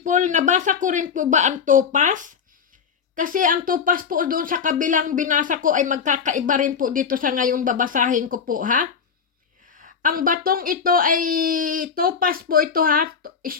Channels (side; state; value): right; quieter; 6.5 dB